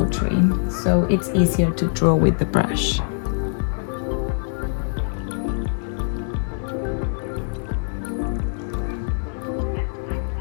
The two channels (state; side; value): silent; right; digital silence